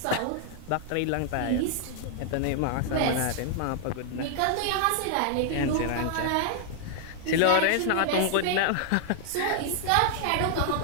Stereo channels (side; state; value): both; different; correlation 0.00